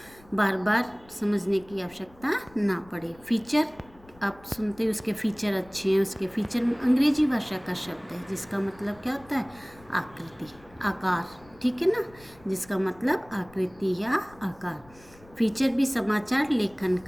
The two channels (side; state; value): left; noise; rumble, 25 dB below the sound